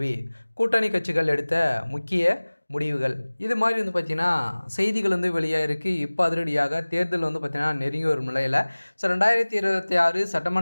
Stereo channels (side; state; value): both; inverted; correlation -1.00